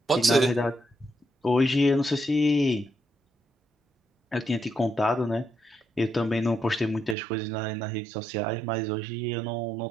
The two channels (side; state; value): left; drops out; at 7.2 s